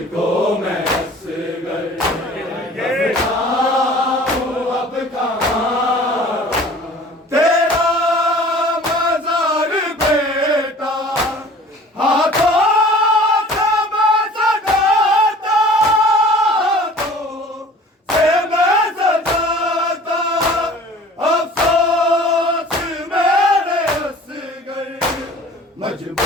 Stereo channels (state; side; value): normal; both; correlation 0.47